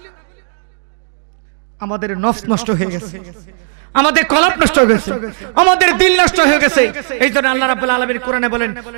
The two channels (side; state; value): left; silent; digital silence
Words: আমাদের নফস নষ্ট হয়ে গেছে, আমাদের কলব নষ্ট হয়ে গেছে, আমাদের দিল নষ্ট হয়ে গেছে। এই জন্য আল্লাহ রাব্বুল আলামিন কোরআনে বলেন,